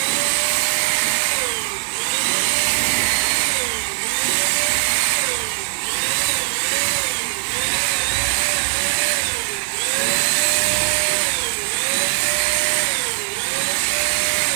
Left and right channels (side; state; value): left; silent; 62 dB below the other